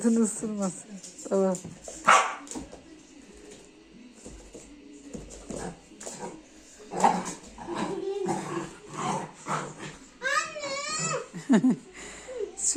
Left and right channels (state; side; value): identical; both; correlation 1.00